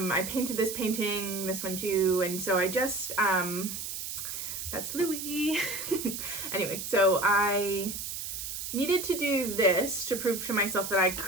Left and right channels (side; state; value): right; noise; hiss, 6 dB below the sound